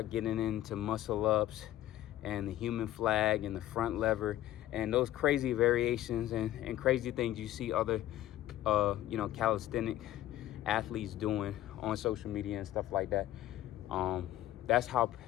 getting into muscle ups and the human flag and the front lever and those crazy variations and crazy things you see other calisthenic athletes doing on social media and stuff like that. That's how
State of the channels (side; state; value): right; quieter; 13.8 dB